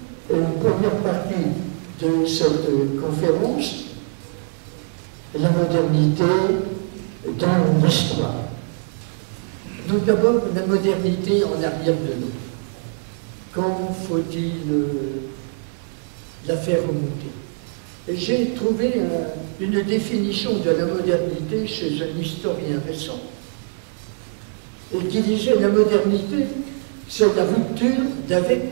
une première partie de cette conférence, la modernité dans l'histoire. Donc d'abord, la modernité en arrière de nous. Comment faut-il la faire remonter? J'ai trouvé une définition de la modernité chez un historien récent, et qui disait la modernité, c'est la rupture d'avec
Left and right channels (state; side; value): silent; left; digital silence